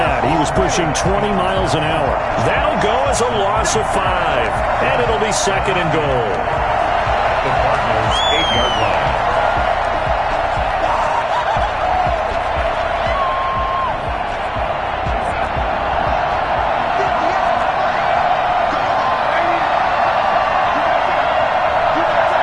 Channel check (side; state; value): both; identical; correlation 1.00